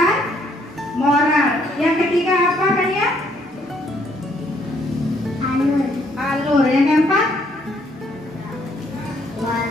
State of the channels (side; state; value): both; normal; correlation 0.68